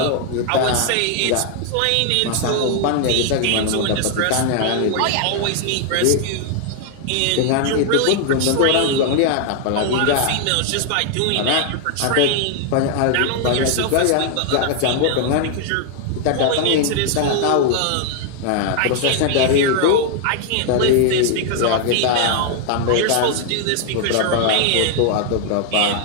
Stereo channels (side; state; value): both; different; correlation 0.00